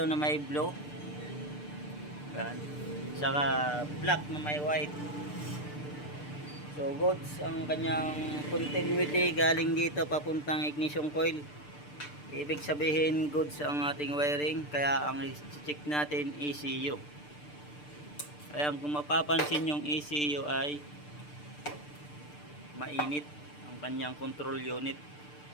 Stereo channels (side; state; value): right; late; 6.8 ms